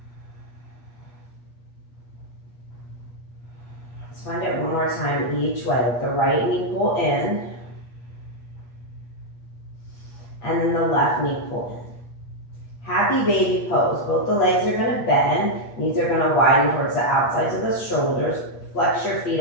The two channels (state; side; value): late; right; 8.4 ms